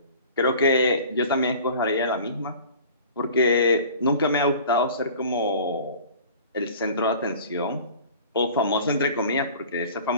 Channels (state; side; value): inverted; both; correlation -0.44